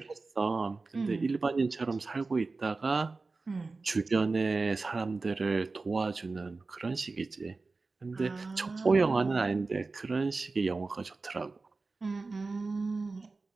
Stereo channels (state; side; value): quieter; left; 3.8 dB